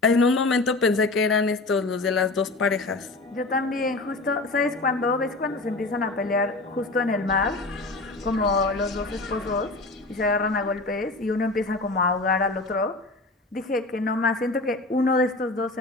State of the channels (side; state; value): right; quieter; 3.2 dB